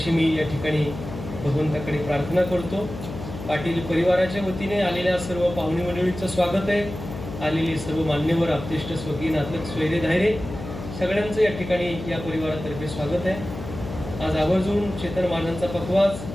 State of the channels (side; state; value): left; noise; hum, 10 dB below the sound